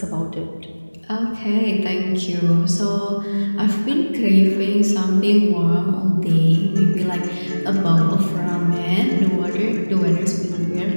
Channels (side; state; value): both; inverted; correlation -1.00